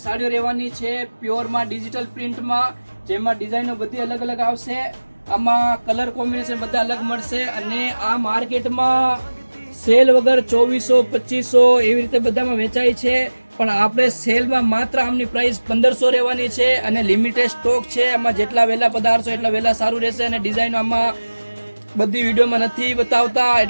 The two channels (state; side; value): inverted; both; correlation -1.00